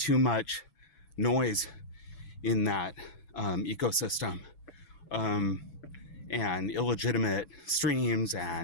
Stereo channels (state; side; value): late; right; 7.0 ms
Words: much noise in that ecosystem, and illegitimate streams,